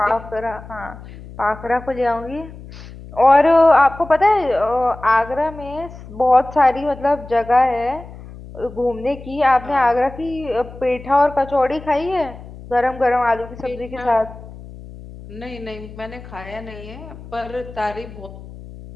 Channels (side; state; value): left; noise; hum, 16 dB below the sound